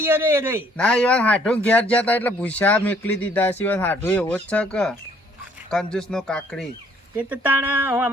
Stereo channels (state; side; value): normal; both; correlation 0.62